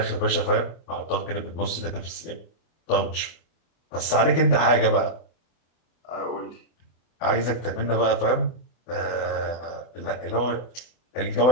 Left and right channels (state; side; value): late; right; 24 ms